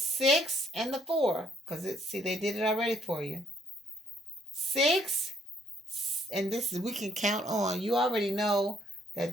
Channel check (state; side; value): normal; both; correlation 0.67